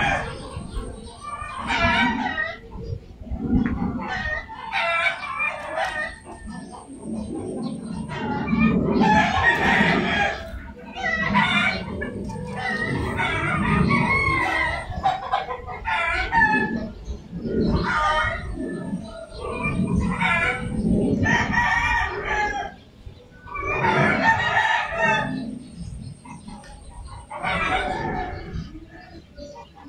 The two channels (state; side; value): identical; both; correlation 1.00